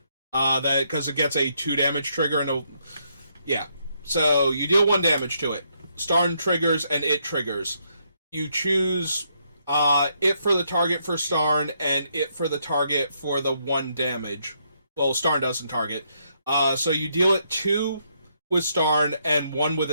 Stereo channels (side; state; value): both; inverted; correlation -0.75